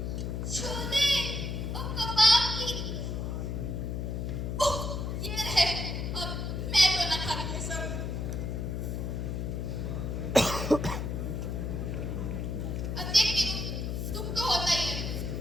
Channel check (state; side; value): noise; left; hum, 2 dB below the sound